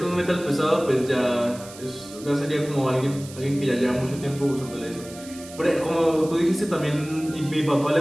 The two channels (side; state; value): right; noise; hiss, 17 dB below the sound